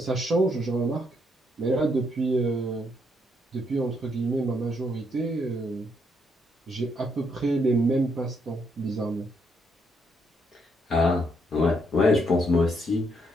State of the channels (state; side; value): normal; both; correlation 0.75